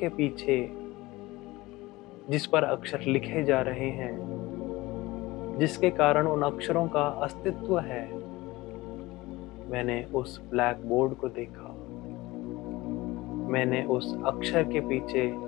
पीछे जिस पर अक्षर लिखे जा रहे हैं, जिसके कारण उन अक्षरों का अस्तित्व है, मैंने उस ब्लैक बोर्ड को देखा। मैंने उस अक्षर के पीछे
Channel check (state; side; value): quieter; right; 20.2 dB